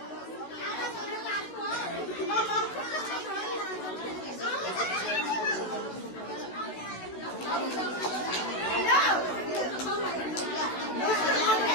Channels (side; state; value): right; late; 16 ms